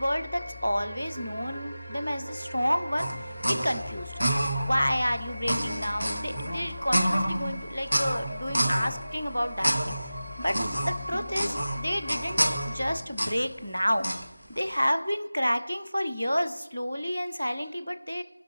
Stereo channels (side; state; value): both; inverted; correlation -0.97